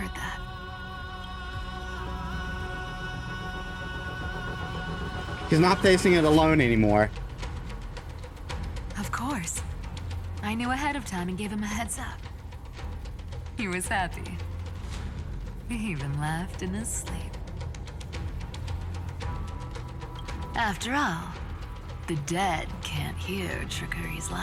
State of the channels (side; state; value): both; identical; correlation 1.00